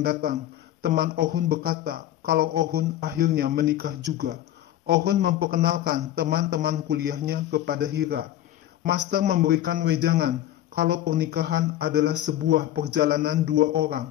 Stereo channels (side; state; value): right; quieter; 12.7 dB